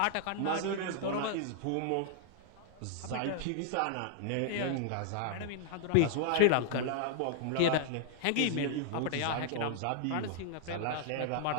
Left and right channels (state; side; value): different; both; correlation 0.00